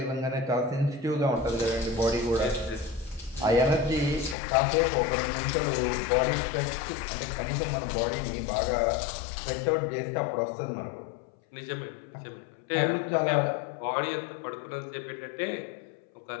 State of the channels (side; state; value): right; drops out; at 4.4 s